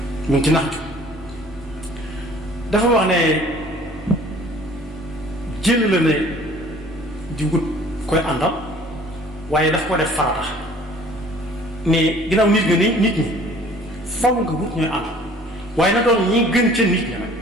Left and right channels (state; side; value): normal; both; correlation 0.52